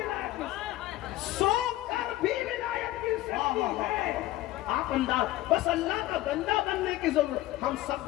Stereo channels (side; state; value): right; quieter; 16.1 dB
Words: نصیب, سو کر بھی ولایت مل سکتی ہے. آپ انداز, بس اللہ کا بندہ بننے کی ضرورت. ہم سب